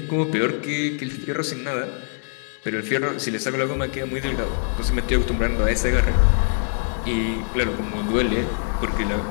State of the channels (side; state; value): right; silent; 63 dB below the other